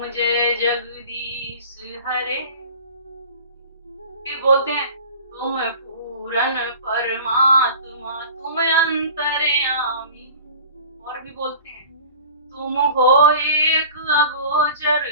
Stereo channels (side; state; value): both; inverted; correlation -0.41